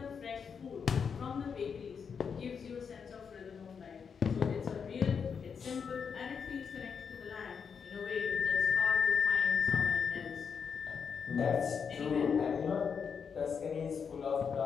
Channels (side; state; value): right; quieter; 6.4 dB